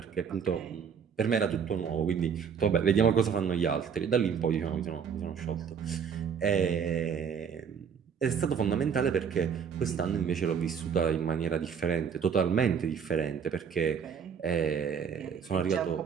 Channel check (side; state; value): left; quieter; 7.1 dB